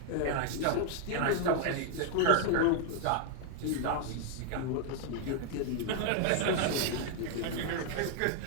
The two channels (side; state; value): both; different; correlation 0.00